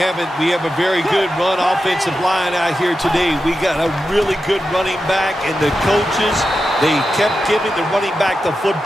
We have a very good run offensive line out here today. We got a really good running back, and the coaches, they kept giving the running back the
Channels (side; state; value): both; normal; correlation 0.90